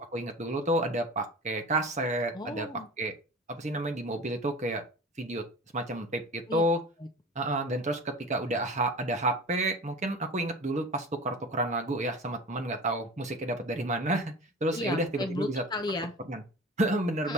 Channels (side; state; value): both; normal; correlation 0.36